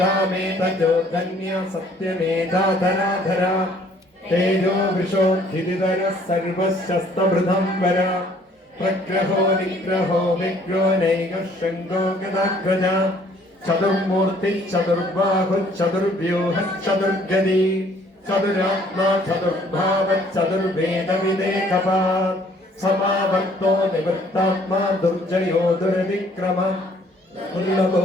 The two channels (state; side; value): normal; both; correlation 0.60